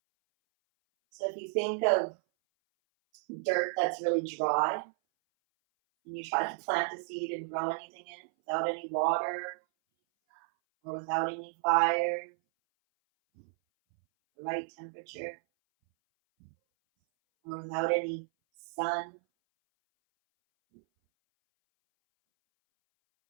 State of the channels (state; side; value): silent; left; 56 dB below the other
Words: So if you think of dirt that's really dry, and you try to plant a seed and grow anything in it without any water or without any fire, the right temperature, or without any sun,